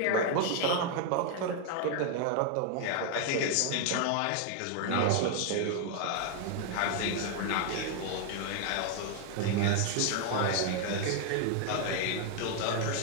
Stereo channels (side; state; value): both; different; correlation 0.00